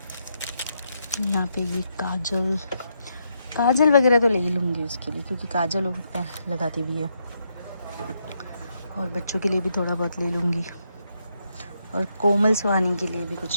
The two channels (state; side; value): inverted; both; correlation -0.79